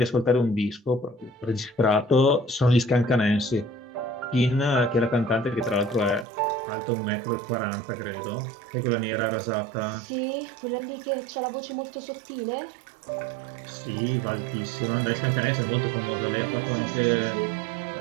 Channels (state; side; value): drops out; left; at 6.2 s